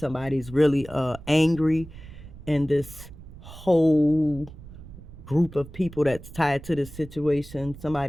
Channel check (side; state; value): right; noise; rumble, 16 dB below the sound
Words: really angry, and this whole group of people that's tied to this situation,